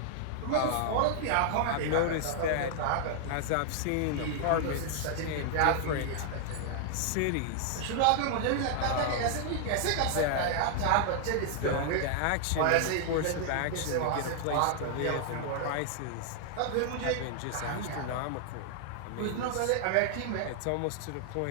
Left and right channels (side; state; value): both; different; correlation 0.00